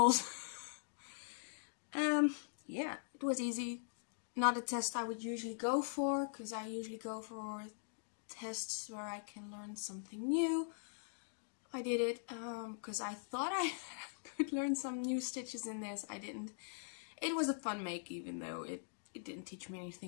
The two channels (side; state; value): right; silent; digital silence